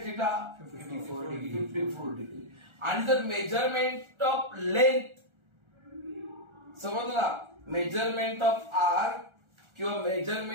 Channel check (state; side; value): late; left; 1.4 ms